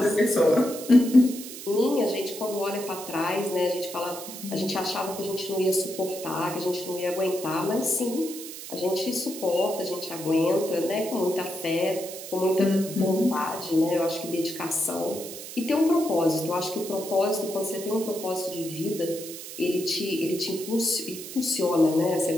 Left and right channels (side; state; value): right; noise; hiss, 11 dB below the sound